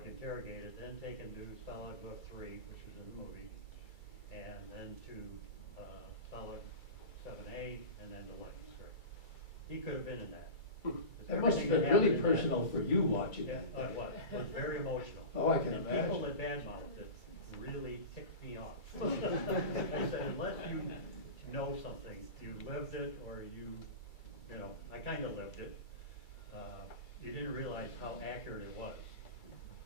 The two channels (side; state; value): right; late; 2.3 ms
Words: interrogated, then taken to Stalag Luft 3, which was in the movie, and then to Stalag 7A, and then to Leningrad. He could have been in that. That must have been really personal for you watching that. It was very emotional. Oh, I can and imagine. People that badmouthed it really ticked me off. I said, unless you know something, you lived it, or you know, I kind of lived it, you didn't realize how accurate it was.